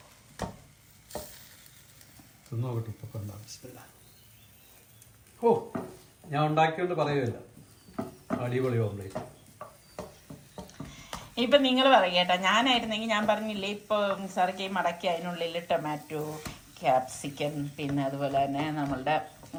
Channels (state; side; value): identical; both; correlation 1.00